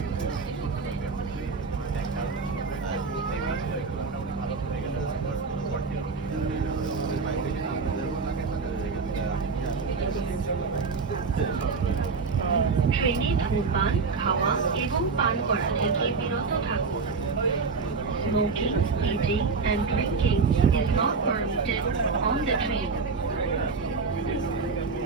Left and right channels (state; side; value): quieter; left; 4.7 dB